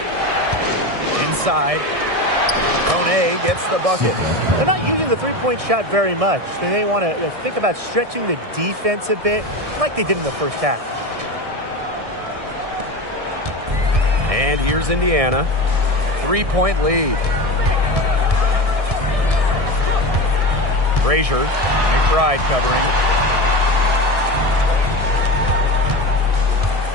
Inside. Kone gets the bucket. They're not using the three-point shot very much. They may want to think about stretching the defense a bit like they did in the first half. And here's Indiana. 3-point lead. Frazier, McBride covering.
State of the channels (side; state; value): left; late; 1.6 ms